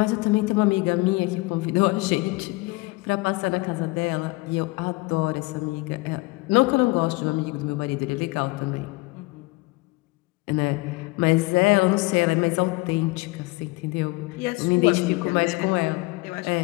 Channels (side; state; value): right; quieter; 23.7 dB